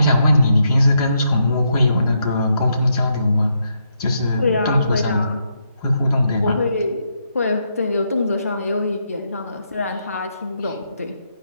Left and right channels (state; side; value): inverted; both; correlation -0.79